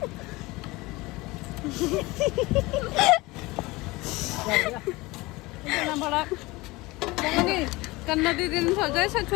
इतना बड़ा कन्ना दीदी ने सोचा इससे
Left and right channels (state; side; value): quieter; right; 21.9 dB